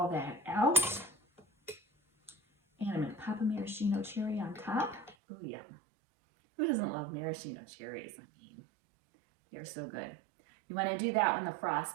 that out. And I'm gonna pop a maraschino cherry on top. Oh yeah. Who doesn't love maraschino cherries? I mean, they're so good. You wanna do that when the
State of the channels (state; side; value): drops out; left; at 5.2 s